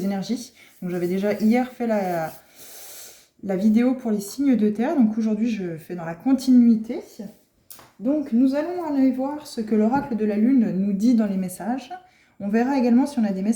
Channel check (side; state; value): both; identical; correlation 1.00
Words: énergies. Donc j'avais déjà hier fait la vidéo pour les signes de terre, donc aujourd'hui je fais dans la continuité. Donc nous allons aller voir ce que l'oracle de la lune nous dit dans les messages. On verra également si on a des